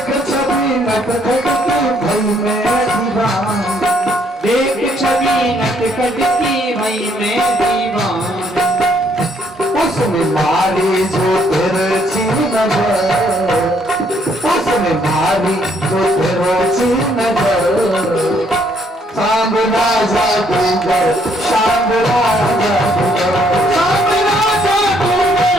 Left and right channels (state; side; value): normal; both; correlation 0.68